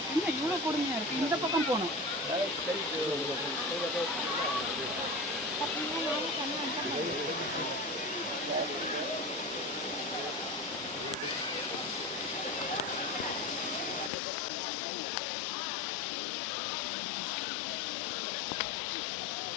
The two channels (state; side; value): drops out; right; at 14.1 s